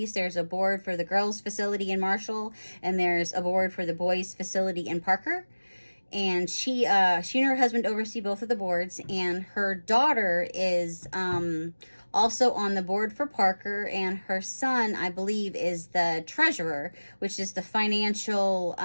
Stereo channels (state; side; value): inverted; both; correlation -1.00